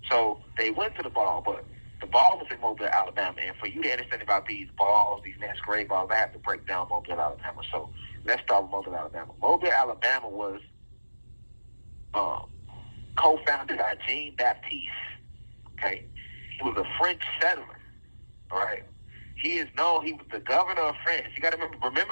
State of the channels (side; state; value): both; inverted; correlation -1.00